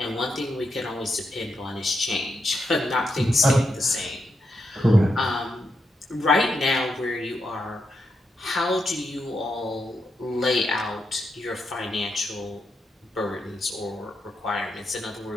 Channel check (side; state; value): both; normal; correlation 0.83